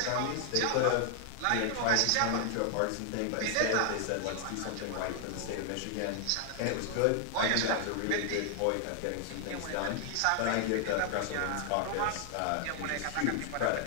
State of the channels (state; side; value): different; both; correlation 0.00